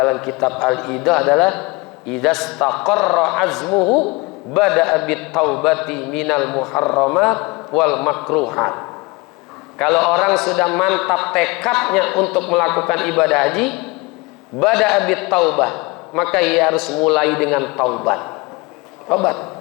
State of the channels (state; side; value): quieter; right; 25.3 dB